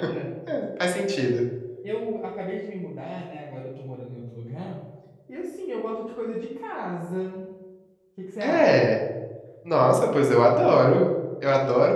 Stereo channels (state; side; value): identical; both; correlation 1.00